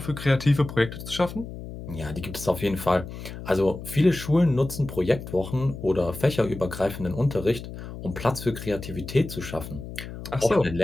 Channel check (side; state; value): left; noise; hum, 11 dB below the sound